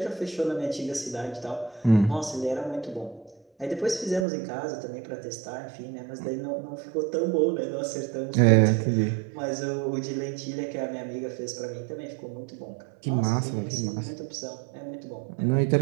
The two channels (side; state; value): left; drops out; at 4.2 s